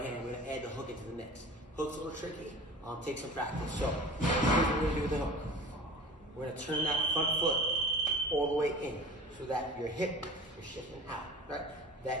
we're gonna add the hook into the mix. Hook's a little tricky. Take some practice. So here's what we're gonna do with the hook. We're gonna turn that front foot all the way in so that your hip is shifting out, right?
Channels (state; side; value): normal; both; correlation 0.38